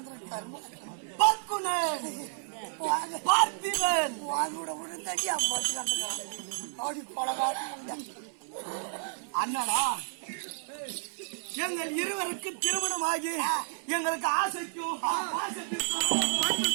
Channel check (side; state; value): left; silent; 57 dB below the other